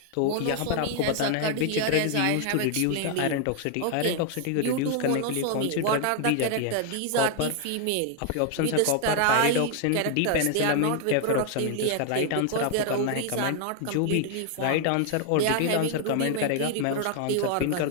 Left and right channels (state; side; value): different; both; correlation 0.00